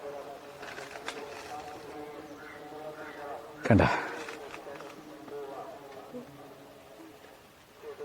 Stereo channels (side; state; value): both; identical; correlation 1.00